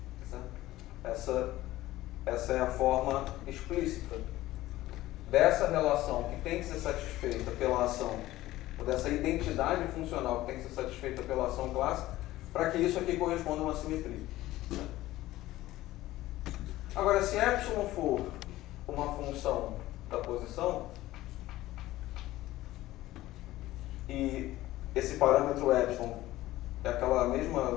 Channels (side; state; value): right; quieter; 16.2 dB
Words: Tá certo? Essa é a forma explícita dessa relação que tem que ser satisfeita pela ação, ou dessa identidade funcional que tem que ser satisfeita pela ação clássica, para que isso aqui corresponda a uma simetria. Agora, se epsilon for uma função da posição, e esse parâmetro epsilon é aquela